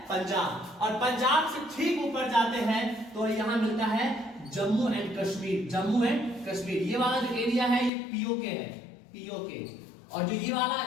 पंजाब। और पंजाब से ठीक ऊपर जाते हैं तो यहां मिलता है जम्मू एंड कश्मीर। जम्मू एंड कश्मीर। ये वाला जो एरिया है ये पीओके है, पीओके। और जो ये वाला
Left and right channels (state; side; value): drops out; right; at 7.9 s